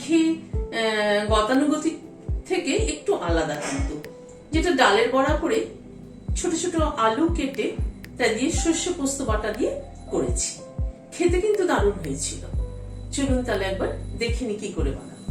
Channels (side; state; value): both; identical; correlation 1.00